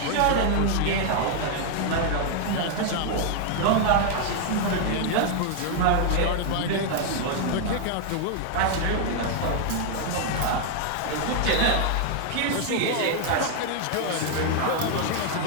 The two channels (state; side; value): different; both; correlation 0.00